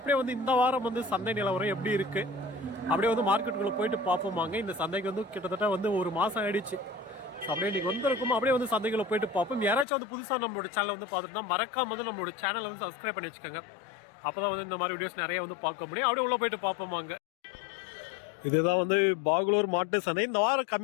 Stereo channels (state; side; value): drops out; right; at 9.9 s